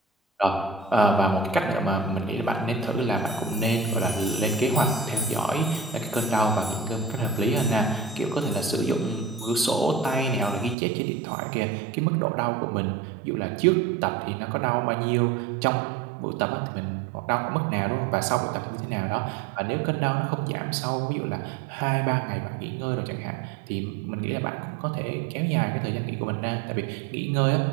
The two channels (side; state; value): left; drops out; at 10.8 s